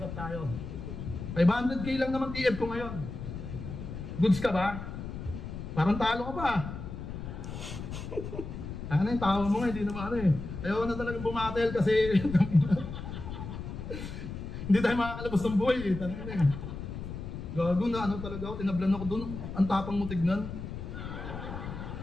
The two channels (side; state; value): left; noise; rumble, 8 dB below the sound